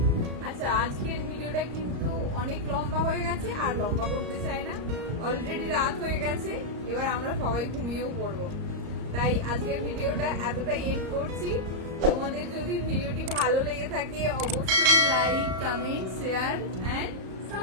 আচ্ছা আজকের ভিডিওটা কিন্তু অনেক লম্বা হয়ে গেছে, আর লম্বা করতে চাই না। অলরেডি রাত হয়ে গেছে, এবার আমরা সবাই ঘুমিয়েও পড়বো। তাই আজকের ভিডিওটা এতটাই এন্ড করছি। তোমাদের যদি ভিডিওটি ভালো লেগে থাকে অবশ্যই like, comment, share and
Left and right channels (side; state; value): left; late; 34 ms